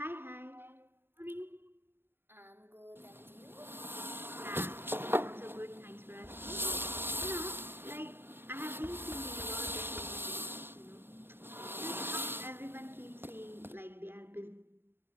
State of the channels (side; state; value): left; late; 0.11 ms